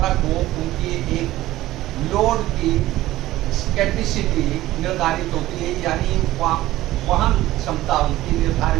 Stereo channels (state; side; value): quieter; left; 15.9 dB